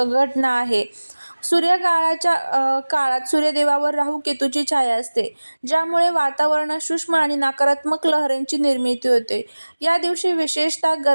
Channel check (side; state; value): both; inverted; correlation -1.00